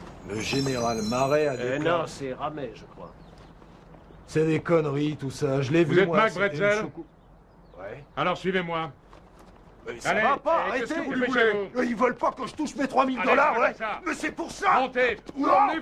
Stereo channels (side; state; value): both; identical; correlation 1.00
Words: Le général Marais a déclaré... Non, c'est Ramet, je crois. C'est des conneries, tout ça. Je l'ai vu, Vous êtes moi. Mac Bretzel? Ouais. Alors suivez-moi. Mais ça Allez, va pas, qu'est-ce arrêtez! que vous voulez? Ils veulent pas que je touche mes 3000 Allez, $, ouais! ça. Mais c'est pour ça! Montez! Où Non.